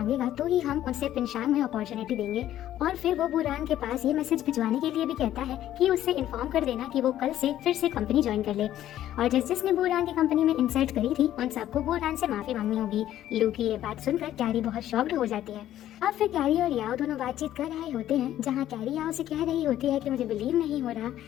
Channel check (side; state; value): right; quieter; 12.4 dB